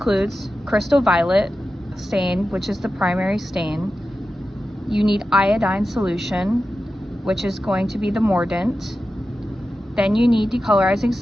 crystal violet stain, which is the primary stain. You need iodine solution, which is going to be the mordant. Then you need decolorizing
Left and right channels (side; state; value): both; normal; correlation 0.92